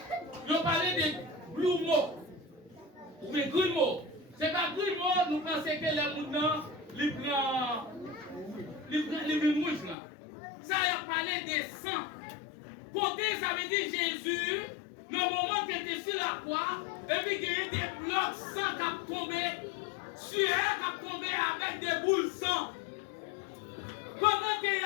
ils ont parlé de grumeaux. Mais grumeaux. C'est pas grumeaux, nous pensons que les moutons, ils prennent mouche là. Ça a parlé des sangs. Côté, ça veut dire Jésus, le moment qu'il était sur la croix, et puis qu'il y a des blocs sang qui ont tombé, sueur qui ont tombé avec des boules sang. Pendant qu'il a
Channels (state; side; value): drops out; right; at 10.0 s